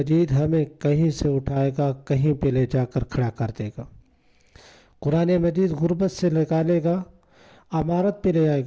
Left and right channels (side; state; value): both; identical; correlation 1.00